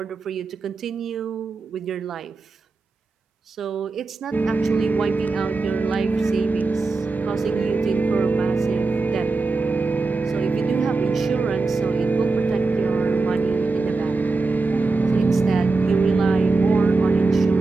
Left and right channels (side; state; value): left; quieter; 3.8 dB